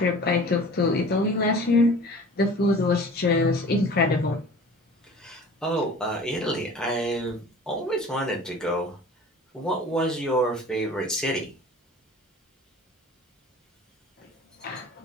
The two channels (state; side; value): normal; both; correlation 0.43